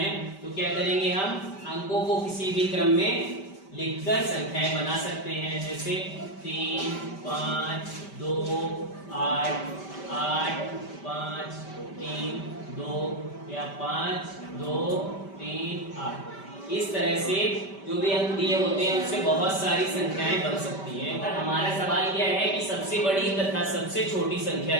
तो क्या करेंगे, हम अंकों को किसी भी क्रम में लिखकर संख्याएं बना सकते हैं। जैसे 3, 5, 2, 8, 8, 5, 3, 2 या 5, 2, 3, 8। इस तरह से जो भी अंक दिए होते हैं उससे बहुत सारी संख्याएं बन सकती हैं। पर हमारा सवाल क्या है कि सबसे बड़ी तथा सबसे छोटी संख्या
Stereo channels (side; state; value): right; late; 5.1 ms